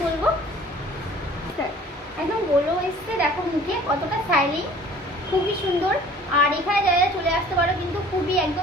বলবো, একদম গ্লো এসছে। দেখো মুখে কতটা স্টাইলিং, খুবই সুন্দর। আর এখানে যারা চলে আসতে পারো কিন্তু খুবই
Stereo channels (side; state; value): both; normal; correlation 0.50